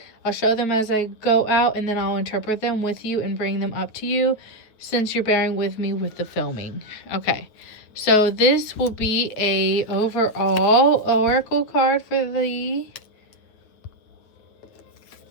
I'll show them as I go out, and then I'll interpret them with you and bring them up to you since you're bearing with me with the filming. Okay. So this will be a overall oracle card for the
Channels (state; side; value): late; right; 8.9 ms